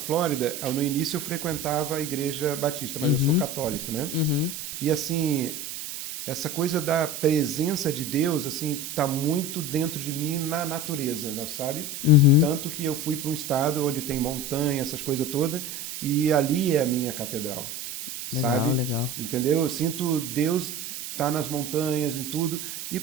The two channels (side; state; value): right; noise; hiss, 7 dB below the sound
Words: no início eu frequentava a igreja batista, mas eu sou católico, né? E assim, essa coisa da presença de Deus, assim, tá muito dentro de mim na natureza, né, sabe? Tanto que eu fui para um estado onde tem montanha, essas coisas todas, e ali é a minha catedral, sabe? Legal. Entendeu? Eu sinto Deus tá nas montanhas e tudo. E